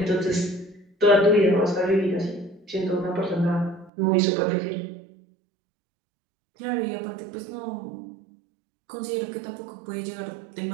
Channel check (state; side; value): drops out; left; at 3.9 s